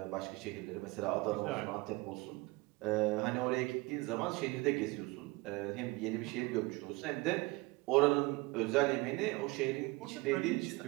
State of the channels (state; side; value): quieter; left; 23.2 dB